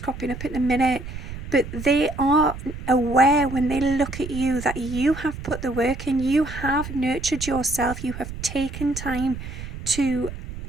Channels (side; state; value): right; noise; rumble, 10 dB below the sound